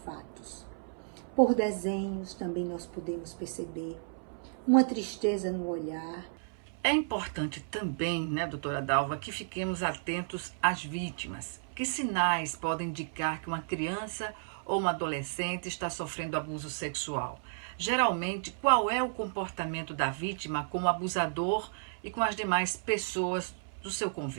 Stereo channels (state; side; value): silent; left; 56 dB below the other